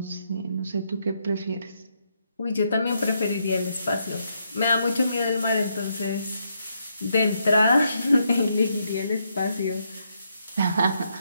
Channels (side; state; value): both; inverted; correlation -0.78